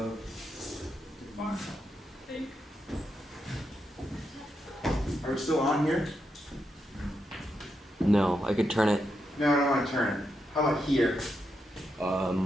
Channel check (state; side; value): normal; both; correlation 0.84